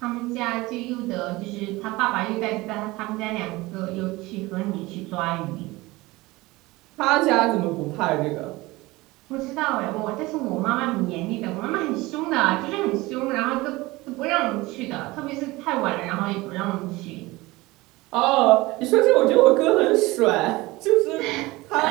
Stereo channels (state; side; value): quieter; left; 20.8 dB